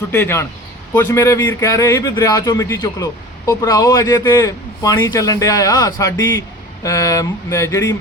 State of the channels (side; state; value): both; normal; correlation 0.38